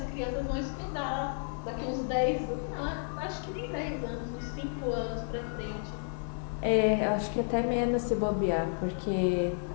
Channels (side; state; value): right; silent; digital silence